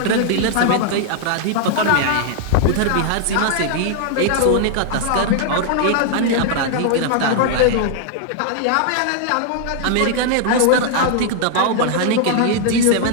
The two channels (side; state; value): both; different; correlation -0.01